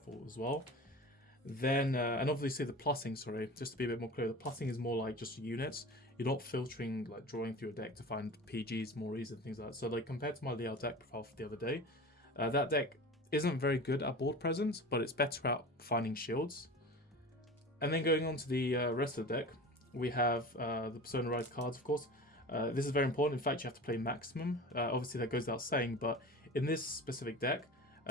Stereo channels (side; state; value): both; normal; correlation 0.34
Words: as well. Then, and obviously the plussing, just to be a bit more clear, the plussing is more like just units. You're not filtering, like drawing through your deck to find PGs more easy and things like that. So like compared to my Liao deck profile for the other day, that deck isn't very good at board presence, but it's better at finding shields. And then going on to the rest of the deck, we have the Persona Ride cards, of course. This is very important. In fact, you have to play maximum. Obviously, that goes without saying, but in this specific deck,